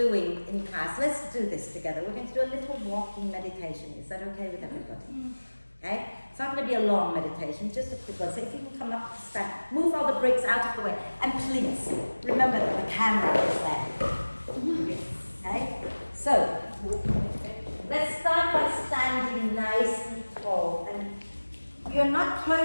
in class, let's do this together. We're going to do a little walking meditation. Is that okay with everybody? Okay? It's not going to be a long meditation, just a quick one. So if you can come up to stand, move all the bricks out of the way. And please, remember that the camera is there. Okay? So, let's start by standing nice and tall. And you're not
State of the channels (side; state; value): both; inverted; correlation -1.00